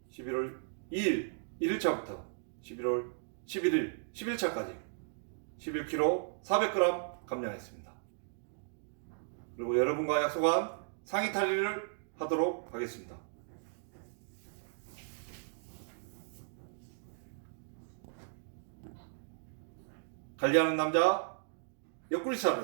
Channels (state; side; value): silent; left; digital silence